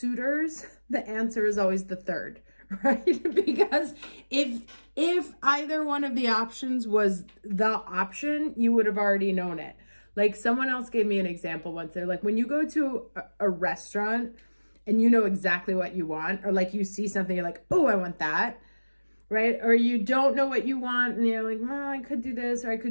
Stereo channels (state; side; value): inverted; both; correlation -1.00